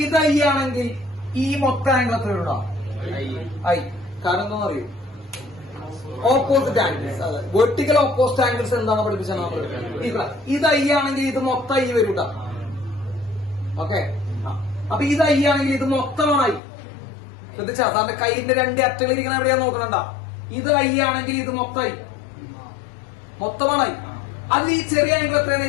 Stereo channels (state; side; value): drops out; right; at 16.6 s